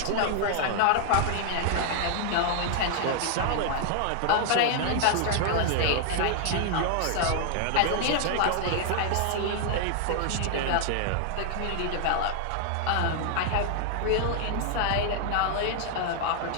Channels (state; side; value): different; both; correlation 0.00